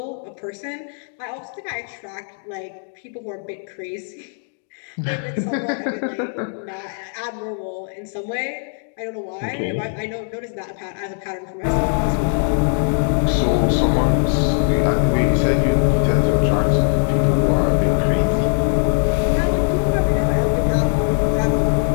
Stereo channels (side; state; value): right; silent; 63 dB below the other